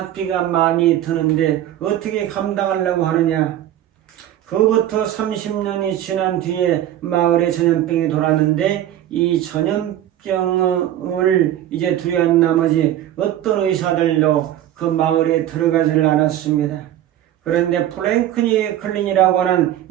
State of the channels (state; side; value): quieter; left; 12.2 dB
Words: 많이 드는데 어떻게 감당하려고 하느냐? 그부터 30년이 지난 뒤에 마을에 전염병이 돌았는데 이 전염병을 이제 두려워한 나머지 어떤 의사들도 그 마을에 들어가지를 않았습니다. 그런데 프랭클린 클린이라고 하는